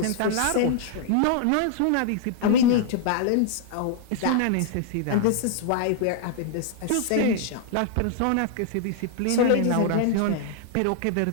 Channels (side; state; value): both; different; correlation 0.00